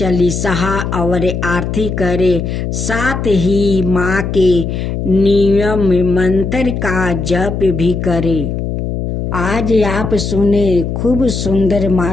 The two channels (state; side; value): noise; left; hum, 3 dB below the sound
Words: और आरती करे। साथ ही माँ के नियम मंत्र का जप भी करे। आज आप सुने खूब सुंदर